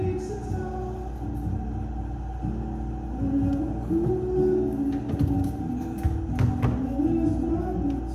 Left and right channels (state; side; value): identical; both; correlation 1.00